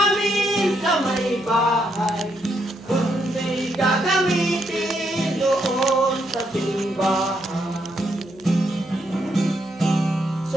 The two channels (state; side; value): noise; right; hum, 25 dB below the sound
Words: sa may bahay, kundi gagamitin doon sa simbahan.